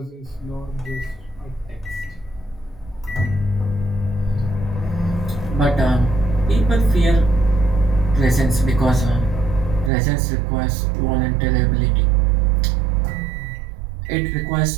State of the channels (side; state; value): left; drops out; at 9.9 s